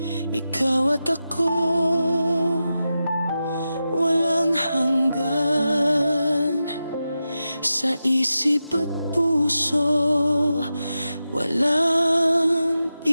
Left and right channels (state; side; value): inverted; both; correlation -0.91